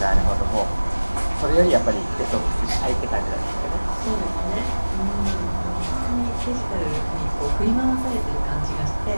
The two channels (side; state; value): both; inverted; correlation -1.00